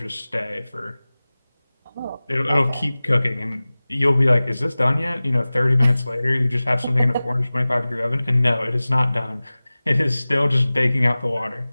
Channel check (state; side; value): inverted; both; correlation -0.98